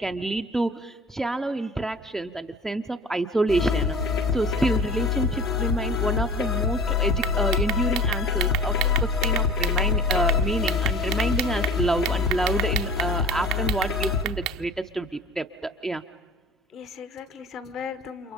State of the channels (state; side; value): normal; both; correlation 0.41